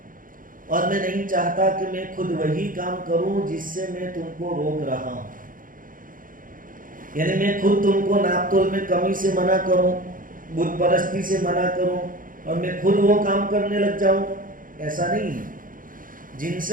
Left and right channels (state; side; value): late; left; 0.40 ms